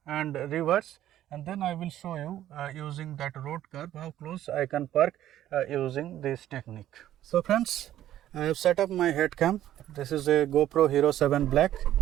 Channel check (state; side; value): quieter; left; 12.5 dB